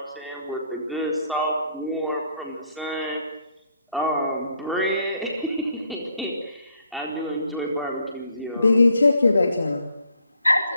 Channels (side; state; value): both; inverted; correlation -0.69